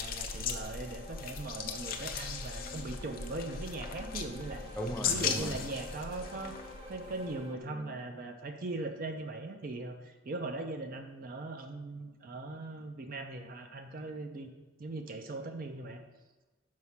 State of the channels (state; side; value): normal; both; correlation 0.28